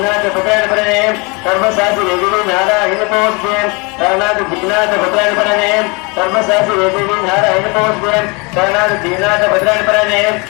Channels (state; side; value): quieter; right; 29.0 dB